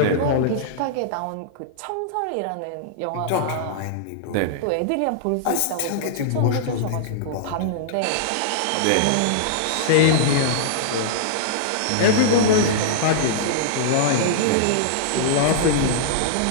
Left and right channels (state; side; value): different; both; correlation -0.02